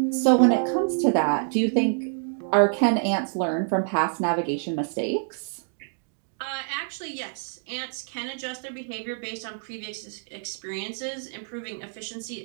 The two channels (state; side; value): silent; left; 60 dB below the other